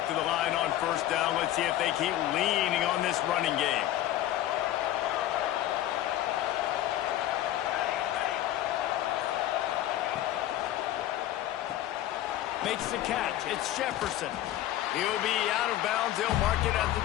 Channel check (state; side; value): quieter; right; 13.4 dB